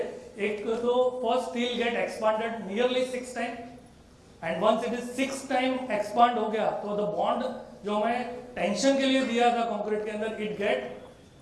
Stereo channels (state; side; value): identical; both; correlation 1.00